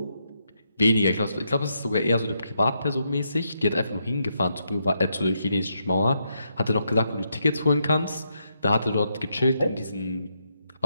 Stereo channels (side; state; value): both; inverted; correlation -0.80